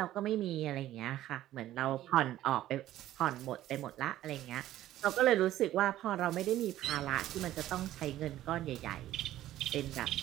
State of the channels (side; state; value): left; quieter; 13.8 dB